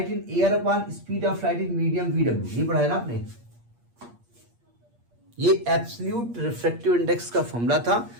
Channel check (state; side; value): late; left; 8.5 ms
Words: in air upon speed of light in medium VW, ये पढ़ा है ना आपने। ये एब्सोल्यूट रिफ्रैक्टिव इंडेक्स का फॉर्मूला था,